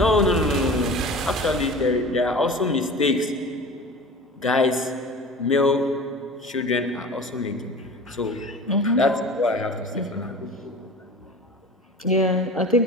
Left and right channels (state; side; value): normal; both; correlation 0.37